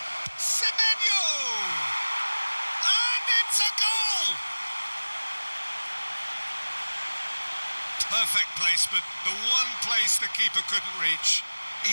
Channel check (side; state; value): both; inverted; correlation -1.00